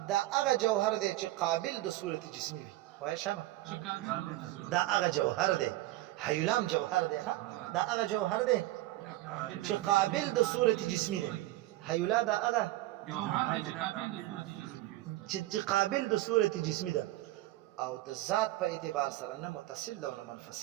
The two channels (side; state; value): left; quieter; 16.9 dB